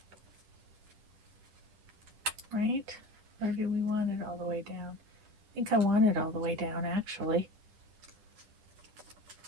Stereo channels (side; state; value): left; late; 10 ms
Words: Right? Or do we want it all the way down? I think I want it all the way down, actually,